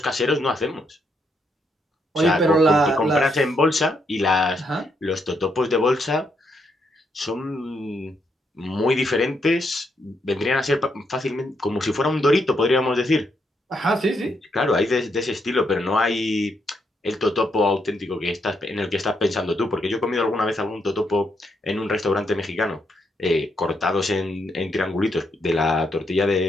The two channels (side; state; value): both; normal; correlation 0.78